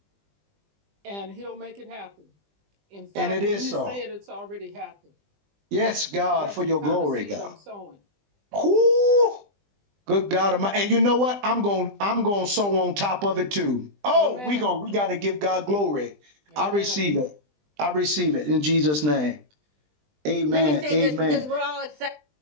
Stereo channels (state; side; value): late; left; 20 ms